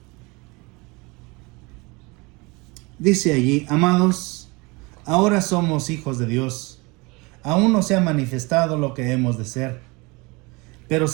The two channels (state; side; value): quieter; left; 26.2 dB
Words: Dice allí: amados, ahora somos hijos de Dios. Aún no se ha manifestado lo que hemos de ser. Pero